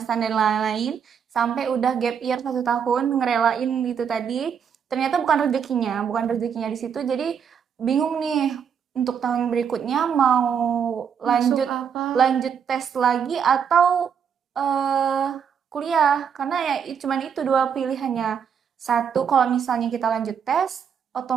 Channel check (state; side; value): quieter; left; 7.4 dB